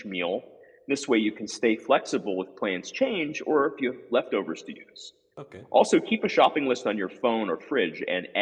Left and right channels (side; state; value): both; identical; correlation 1.00